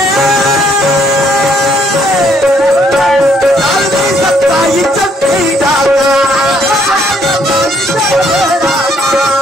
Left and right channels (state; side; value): normal; both; correlation 0.68